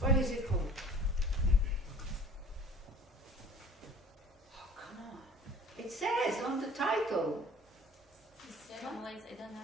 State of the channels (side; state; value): both; normal; correlation 0.47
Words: is it called? Oh, come on. It says on the title. I don't